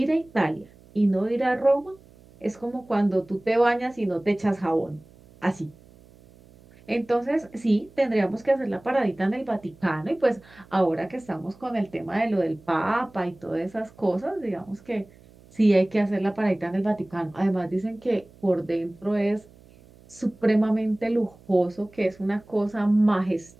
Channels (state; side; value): noise; right; hum, 25 dB below the sound